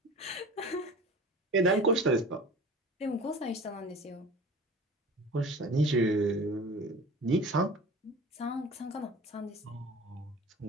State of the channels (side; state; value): both; normal; correlation 0.39